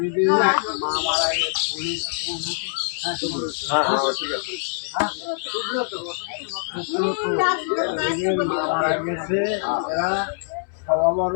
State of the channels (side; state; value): right; silent; digital silence